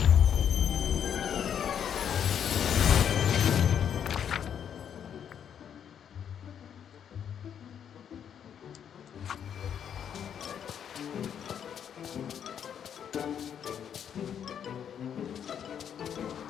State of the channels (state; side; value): quieter; right; 8.6 dB